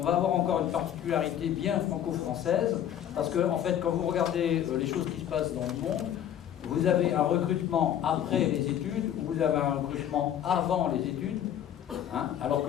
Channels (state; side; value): quieter; right; 10.3 dB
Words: va avoir encore une particularité bien franco-française, parce que en fait, quand vous regardez les choses qui se passent dans le monde, vous avez un recrutement après les études, ou vous avez un recrutement avant les études, hein, alors